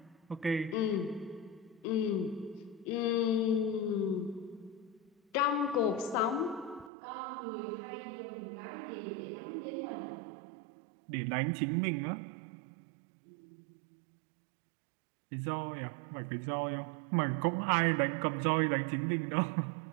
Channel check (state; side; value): drops out; left; at 6.9 s